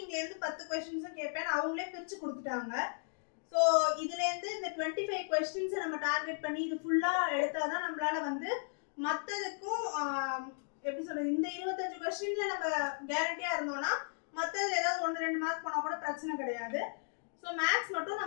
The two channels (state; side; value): silent; right; digital silence